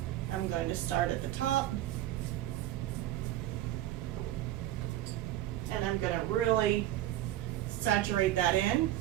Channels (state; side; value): quieter; left; 13.6 dB